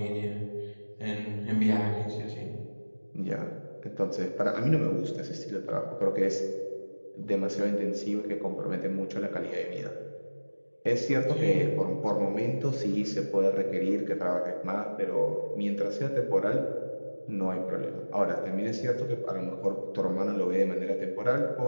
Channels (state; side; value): inverted; both; correlation -1.00